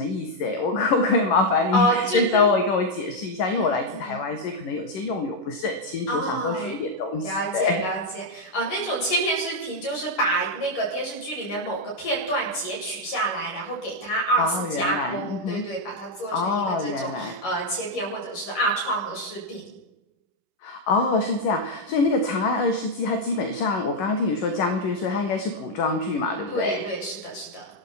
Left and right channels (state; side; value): late; right; 11 ms